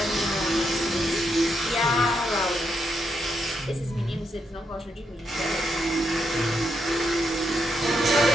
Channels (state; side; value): normal; both; correlation 0.80